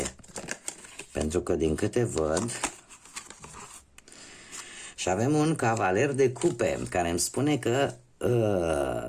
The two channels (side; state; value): both; identical; correlation 1.00